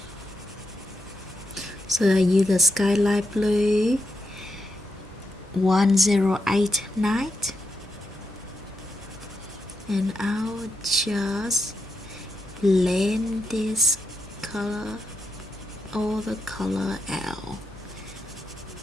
So I use the skylight blue 1089, and I'll just blend this color, all the color out.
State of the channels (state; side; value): normal; both; correlation 0.84